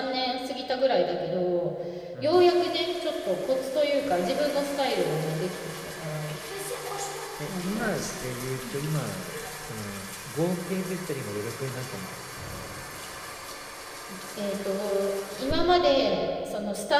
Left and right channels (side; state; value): both; identical; correlation 1.00